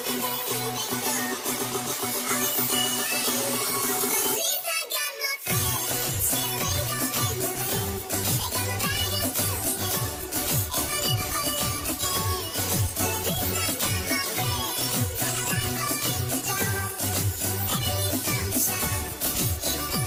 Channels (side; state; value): both; identical; correlation 1.00